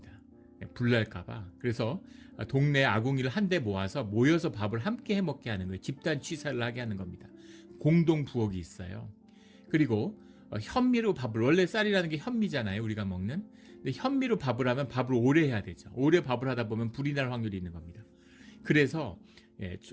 불날까봐. 그래서 동네 아궁이를 한데 모여서 밥을 함께 해먹게 하는 거예요. 집단 취사를 하게 하는 겁니다. 공동 부엌이 있어요. 그리고 현미로 밥을, 원래 쌀이라는 게 현미잖아요, 우리가 먹는. 근데 현미로 밥을 하면 밥을 오래 해야 되죠. 오래 밥을 하다 보면 불이 날 확률이 있는 겁니다. 그래서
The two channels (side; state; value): both; identical; correlation 1.00